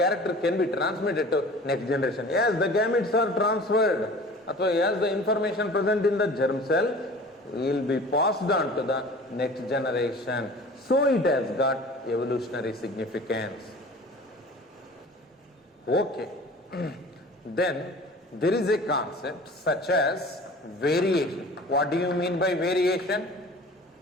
can be transmitted to next generation. Yes, the gametes are transferred. As the information present in the germ cell will be passed on to the next generation. So it has got evolutionary significance. Okay. Then there is a concept such as variation. What do you mean by variation?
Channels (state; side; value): normal; both; correlation 0.43